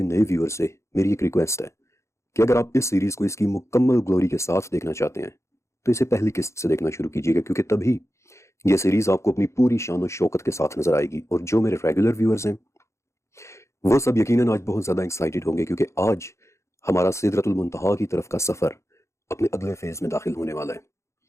نئے ویور سے میری ایک ریکویسٹ ہے کہ اگر آپ اس سیریز کو اس کی مکمل گلوری کے ساتھ دیکھنا چاہتے ہیں تو اسے پہلی قسط سے دیکھنا شروع کیجیے گا، کیونکہ تبھی یہ سیریز آپ کو اپنی پوری شان و شوکت کے ساتھ نظر آئے گی۔ اور جو میرے ریگولر ویورز ہیں وہ سب یقیناً آج بہت زیادہ ایکسائٹڈ ہوں گے، کیونکہ آج ہمارا سدرۃ المنتہا کی طرف کا سفر اپنے اگلے فیز میں داخل ہونے والا ہے۔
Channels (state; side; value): late; right; 0.14 ms